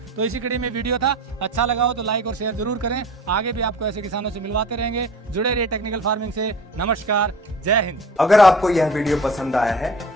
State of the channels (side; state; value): both; normal; correlation 0.41